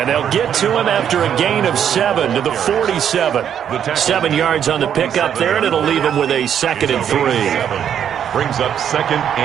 they'll get to him after a gain of 7 to the 47. 7 yards on the pickup there, and it'll leave him with a 2nd and 3. Brings up 2nd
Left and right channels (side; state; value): left; quieter; 9.0 dB